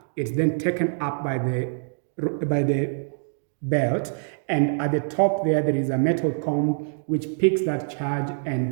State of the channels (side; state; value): left; silent; digital silence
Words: it's then taken up by the belt, and at the top there is a metal comb which picks that charge